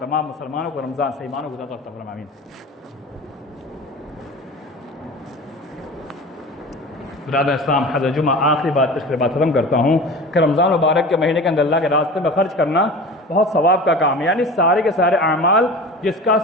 تمام مسلمانوں کو رمضان سے ایمانوں کو عطا فرمائے، آمین۔ برادر اسلام، حضرت جمعہ آخری بات پچھلے بات ختم کرتا ہوں کہ رمضان مبارک کے مہینے کے اندر اللہ کے راستے میں خرچ کرنا بہت ثواب کا کام ہے، یعنی سارے کے سارے اعمال جس کا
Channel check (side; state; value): both; normal; correlation 0.35